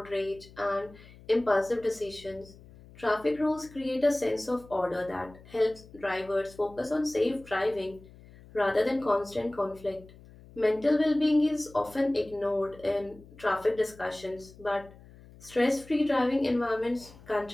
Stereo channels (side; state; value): left; noise; hum, 21 dB below the sound